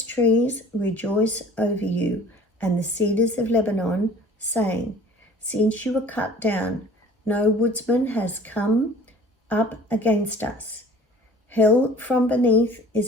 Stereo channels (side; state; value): both; normal; correlation 0.48